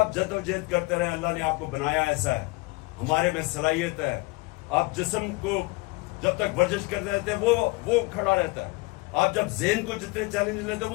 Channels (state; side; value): quieter; right; 24.7 dB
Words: जद्दोजहद करते रहे, अल्लाह ने आपको बनाया ऐसा है, हमारे में सलाहियत है। आप जिस्म को जब तक वर्जिश करते रहते हैं वो खड़ा रहता है। आप जब ज़हन को जितने चैलेंज लेते हैं